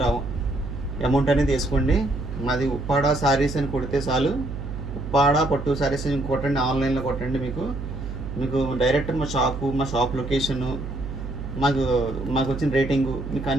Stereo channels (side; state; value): right; noise; hum, 7 dB below the sound